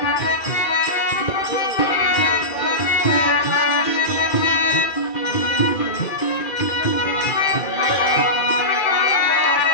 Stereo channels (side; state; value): right; late; 2.4 ms